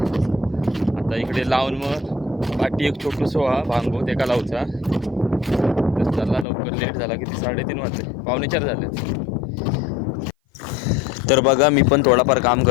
आता इकडे लावून मग पाठी एक छोटू सोहा भांगो ते का लावचा. तर चला लवकर लेट झाला किती 3:30 वाजले 3:45 झालेत. तर बघा मी पण थोडाफार काम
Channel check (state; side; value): drops out; right; at 6.5 s